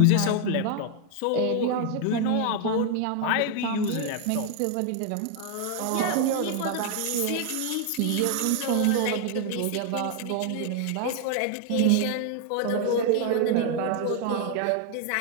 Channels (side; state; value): both; different; correlation 0.00